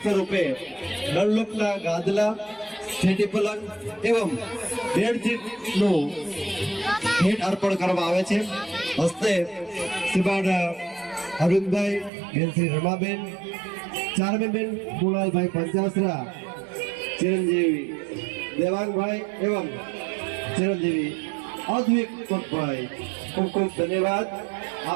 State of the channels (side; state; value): left; drops out; at 12.1 s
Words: સ્વરૂપે ડનલોપના ગાદલા, સ્ટેટી પલંગ એવં બેડશીટનું ભેટ અર્પણ કરવામાં આવે છે. હસ્તે શ્રીમાન અરવિંદભાઈ, બેન શ્રી રમાબેન, ચારમીબેન કુણાલભાઈ પંચાસરા, ચિરંજીવી દેવાંગભાઈ એવં ચિરંજીવી અદ્વિક કોટભાઈ, ખૂબ ખૂબ ધન્યવાદ.